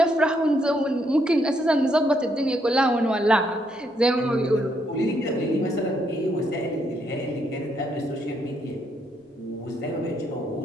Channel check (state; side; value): normal; both; correlation 0.75